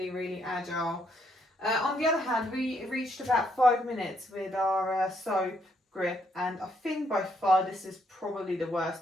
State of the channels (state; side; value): normal; both; correlation 0.73